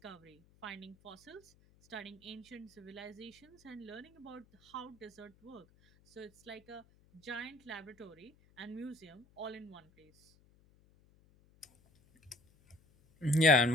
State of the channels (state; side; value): noise; left; hum, 30 dB below the sound